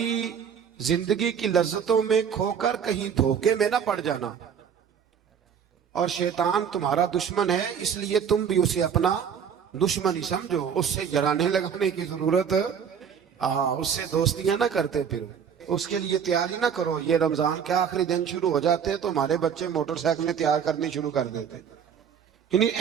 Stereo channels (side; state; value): left; quieter; 7.6 dB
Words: زندگی کی لذتوں میں کھو کر کہیں دھوکے میں نہ پڑ جانا. اور شیطان تمہارا دشمن ہے، اس لیے تم بھی اسے اپنا دشمن ہی سمجھو. اس سے جرانے لگانے کی ضرورت، اس سے دوستیاں نہ کرتے، پھر اس کے لیے تیاری نہ کرو. یہ رمضان کے آخری دن شروع ہو جاتے تو ہمارے بچے موٹر سائیکلیں تیار کرنی شروع کر دیتے، یعنی